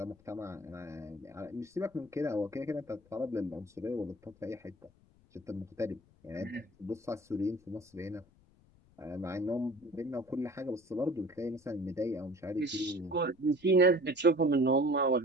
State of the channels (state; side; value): noise; left; rumble, 29 dB below the sound